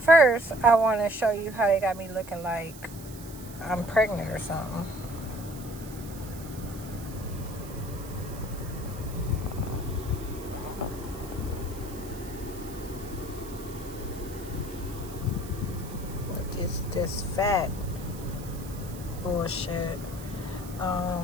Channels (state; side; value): noise; right; hiss, 17 dB below the sound